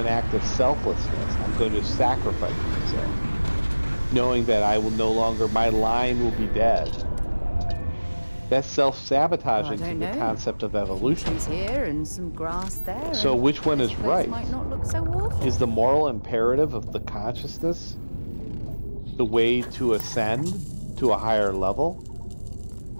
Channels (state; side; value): inverted; both; correlation -1.00